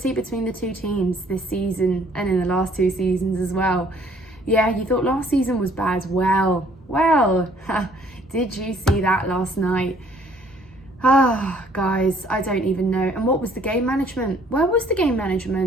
between the two teams this season and in the last 2 seasons as well. Yeah, you thought last season was bad. Well, did you see that last night? Guys, I don't even know. And what was the game management? Where was the game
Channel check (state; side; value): normal; both; correlation 0.61